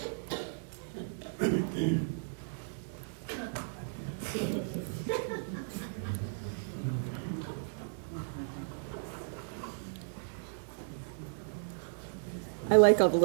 I like all the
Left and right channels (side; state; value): left; silent; digital silence